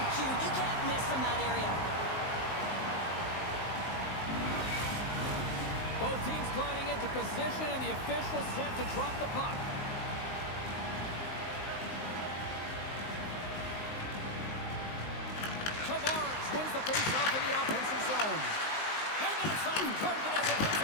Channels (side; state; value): right; late; 19 ms